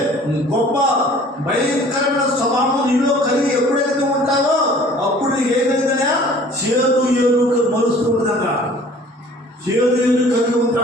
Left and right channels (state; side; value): normal; both; correlation 0.50